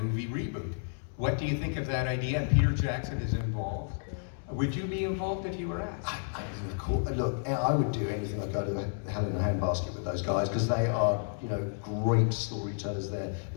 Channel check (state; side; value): silent; right; digital silence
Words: reboot. What do you think of that idea? And Peter Jackson is involved. Would you be involved if you were asked? Look, I would do anything. I'd go to Hell in a Handbasket with those guys, because they are, you know, great storytellers. They're